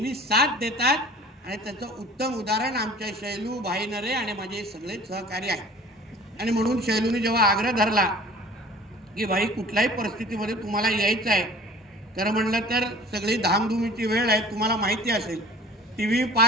साथ देतात आणि त्याचं उत्तम उदाहरण आमच्या शैलू, भाई नरे आणि माझे सगळे सहकारी आहेत. आणि म्हणून शैलूने जेव्हा आग्रह धरला की भाई कुठल्याही परिस्थितीमध्ये तुम्हाला यायचं आहे, खरं म्हणलं तर सगळी धामधुमीची वेळ आहे, तुम्हाला माहिती असेल, टीव्ही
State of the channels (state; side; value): normal; both; correlation 0.46